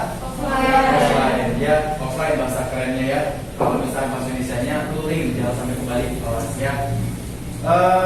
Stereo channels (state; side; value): identical; both; correlation 1.00